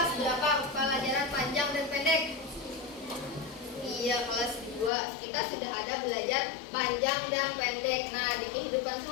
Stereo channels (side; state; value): right; drops out; at 4.9 s